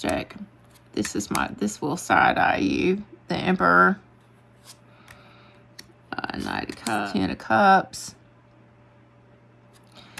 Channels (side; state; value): both; identical; correlation 1.00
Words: deck. This will side-eye you. The Emperor. Knight of Cups. Ten of Cups.